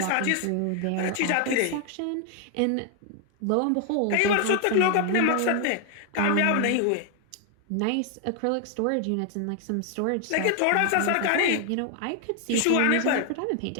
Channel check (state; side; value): different; both; correlation 0.00